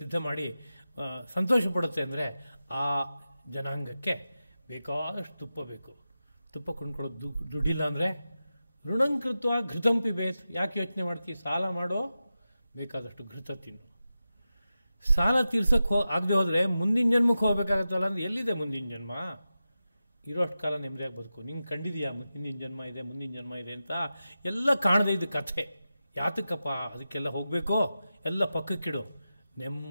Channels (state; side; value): inverted; both; correlation -0.92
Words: ಮಾಡಿ ಸಂತೋಷ ಪಡುತ್ತೆ ಅಂದರೆ ಆ ಜನಾಂಗಕ್ಕೆ ಬೇಕಾದಷ್ಟು ತುಪ್ಪ ಬೇಕು. ತುಪ್ಪ ಕೊಂಡ್ಕೊಳ್ಳೋದು ದುಡ್ಡಿಲ್ಲ ಅಂದರೆ ಋಣಂಕೃತ್ವ ಘೃತಂ ಪಿಬೇತ್. ಯಾಕೆ ಯೋಚನೆ ಮಾಡ್ತೀವಿ? ಸಾಲ ಮಾಡೋ, ಬೇಕಾದಷ್ಟು ಘೃತ ತಿನ್ನು. ಸಾಲ ತೀರ್ಸಕ್ಕೆ ಆಗದೆ ಹೋದರೆ ಮುಂದಿನ ಜನ್ಮಕ್ಕೆ ಹೋಗ್ಬೇಕಾಗತ್ತಲ್ಲ ಅಂದ್ರೆ ಎಲ್ಲಿದೆ ಮುಂದಿನ ಜನ್ಮ? ಇರೋಷ್ಟು ಕಾಲ ನೆಮ್ಮದಿಯಾಗಿ ಬದುಕು. ನಿಂಗೆ ಕಂಡಿದೆಯಾ ಹಿಂದಿನ ಜನ್ಮ ಇದೆ, ಮುಂದಿನ ಜನ್ಮ ಇದೆ ಅಂತ? ಎಲ್ಲ ಕಾಣದೇ ಇದ್ದ ಕಥೆ. ಯಾತಕ್ಕಪ್ಪ ಅದಕ್ಕೆಲ್ಲ ಹೋಗಬೇಕೋ? ಎಲ್ಲ ಪಕ್ಕಕ್ಕಿಡು.